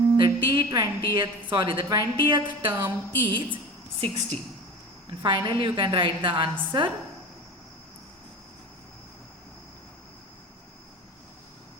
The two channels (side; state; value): both; normal; correlation 0.34